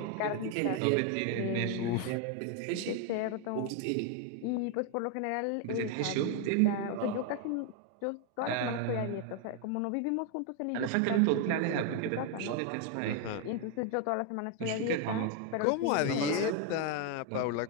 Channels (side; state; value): both; different; correlation 0.01